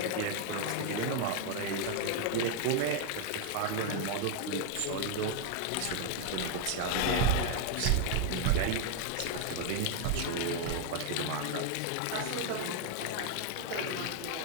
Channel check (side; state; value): both; different; correlation 0.01